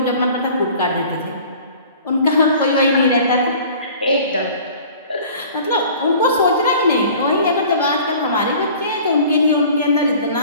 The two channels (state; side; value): inverted; both; correlation -0.47